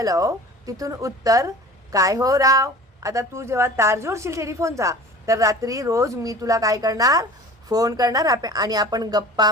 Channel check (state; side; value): normal; both; correlation 0.41